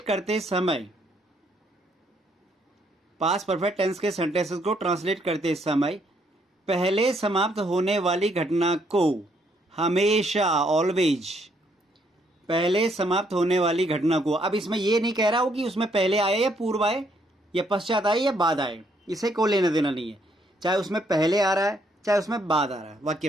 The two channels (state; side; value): normal; both; correlation 0.71